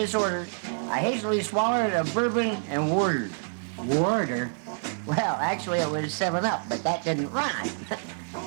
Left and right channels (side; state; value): left; silent; digital silence